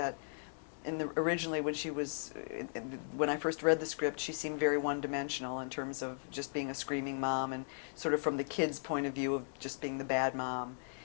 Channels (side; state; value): right; silent; digital silence